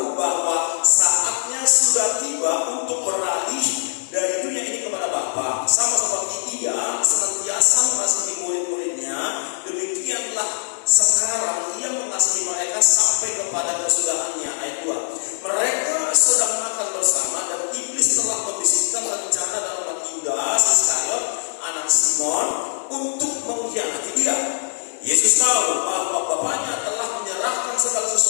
bahwa saatnya sudah tiba untuk beralih dari dunia ini kepada Bapa. Sama seperti Ia senantiasa mengasihi murid-muridnya, demikianlah sekarang Ia mengasihi mereka sampai kepada kesudahannya. Ayat 2. Mereka sedang makan bersama dan iblis telah membisikkan rencana dalam hati Yudas Iskariot, anak Simon, untuk mengkhianati dia. Yesus tahu bahwa Bapaknya telah menyerahkan segala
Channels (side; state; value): right; silent; digital silence